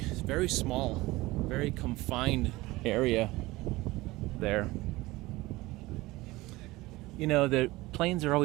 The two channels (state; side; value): quieter; left; 20.0 dB